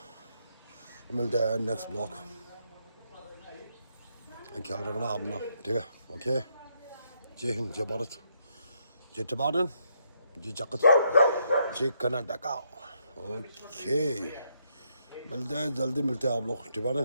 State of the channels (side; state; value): both; inverted; correlation -0.76